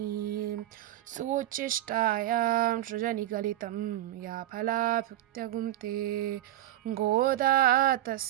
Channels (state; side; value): quieter; left; 13.9 dB